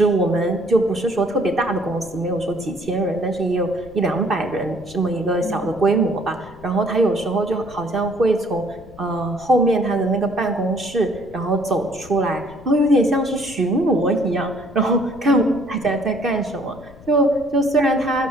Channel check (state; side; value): noise; left; rumble, 21 dB below the sound